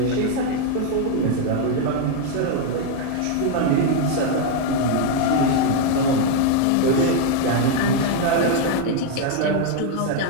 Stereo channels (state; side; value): different; both; correlation 0.01